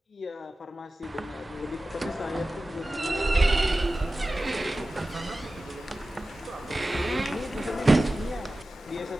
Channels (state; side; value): normal; both; correlation 0.96